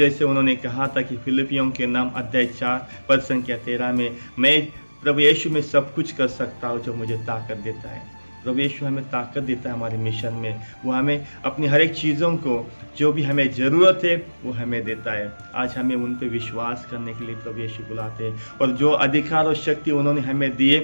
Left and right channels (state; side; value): inverted; both; correlation -1.00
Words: उन्होंने कहा था कि फिलिपियों के नाम अध्याय 4 पद संख्या 13 में, मैं प्रभु यीशु में सब कुछ कर सकता हूँ जो मुझे ताकत देता है। प्रभु यीशु हमें ताकत देता है हमारे मिशन में। वो हमें अपनी हर एक चीज़ों को जो भी हमें ज़रूरत है वो हमें देता है। आज हमें उन पे विश्वास करने के लिए प्रभु यीशु बुलाते हैं, और जो अधिकार और शक्ति उन्होंने हमें